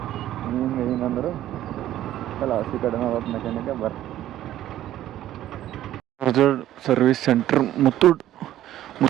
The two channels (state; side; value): quieter; left; 13.0 dB